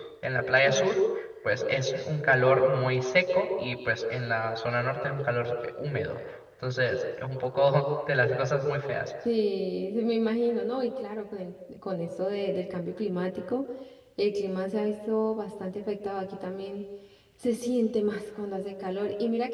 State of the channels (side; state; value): both; identical; correlation 1.00